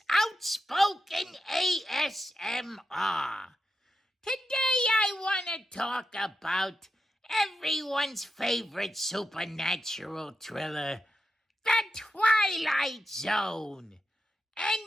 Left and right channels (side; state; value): both; normal; correlation 0.88